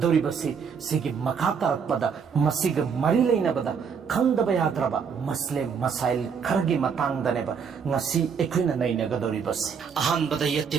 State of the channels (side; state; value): left; quieter; 6.4 dB